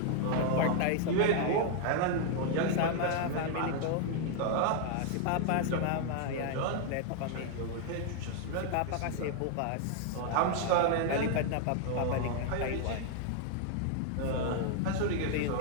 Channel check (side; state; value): both; different; correlation 0.00